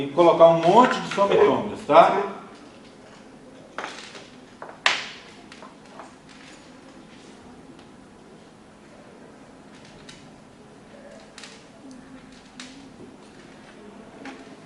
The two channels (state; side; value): identical; both; correlation 1.00